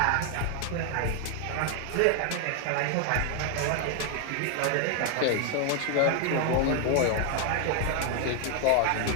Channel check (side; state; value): both; different; correlation 0.00